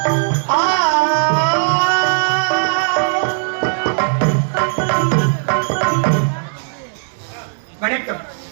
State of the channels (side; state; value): left; silent; 68 dB below the other